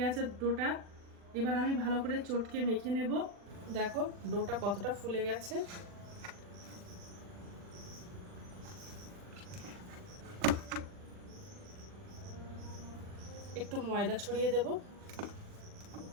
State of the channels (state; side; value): late; left; 40 ms